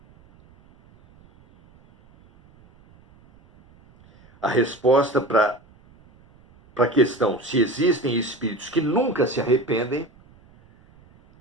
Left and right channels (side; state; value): right; noise; rumble, 29 dB below the sound